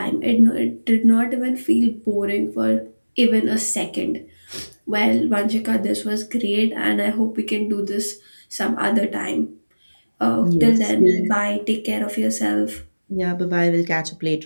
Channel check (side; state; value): both; inverted; correlation -1.00